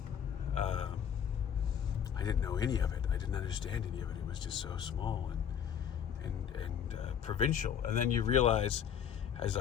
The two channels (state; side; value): quieter; right; 8.5 dB